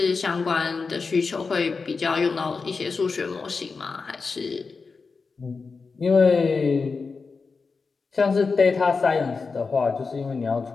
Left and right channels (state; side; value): quieter; right; 4.6 dB